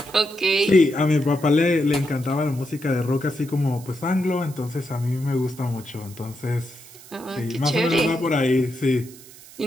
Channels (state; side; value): noise; right; hiss, 20 dB below the sound